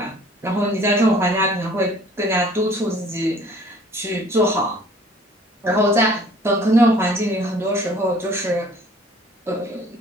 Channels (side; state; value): both; normal; correlation 0.53